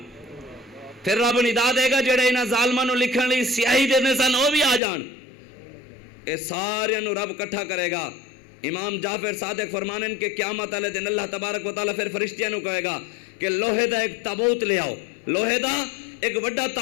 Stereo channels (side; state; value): right; drops out; at 4.8 s